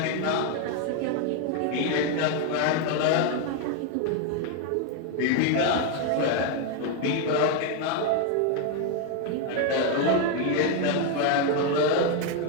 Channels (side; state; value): both; different; correlation 0.01